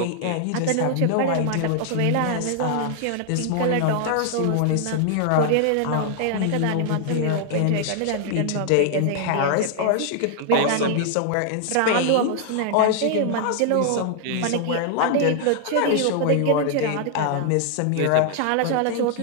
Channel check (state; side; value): different; both; correlation 0.00